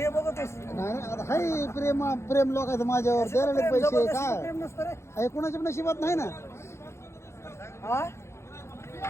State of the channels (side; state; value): right; late; 0.13 ms